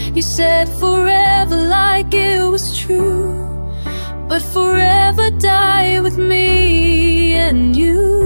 You said forever like it was true, but forever die with me and you.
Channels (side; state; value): both; inverted; correlation -1.00